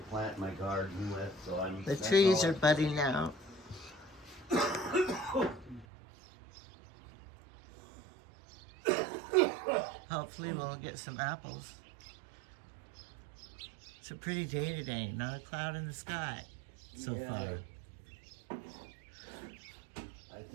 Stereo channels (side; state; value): left; drops out; at 5.9 s